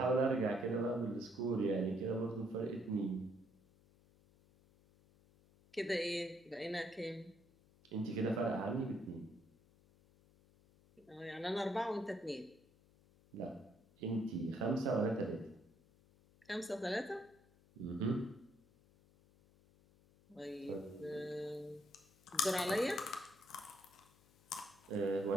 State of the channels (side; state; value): left; noise; hum, 28 dB below the sound